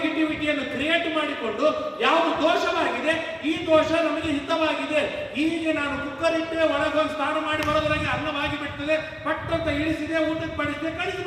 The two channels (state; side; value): identical; both; correlation 1.00